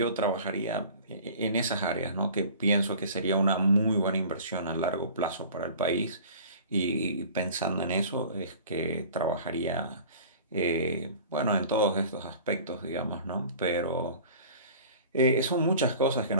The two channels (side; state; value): both; inverted; correlation -0.44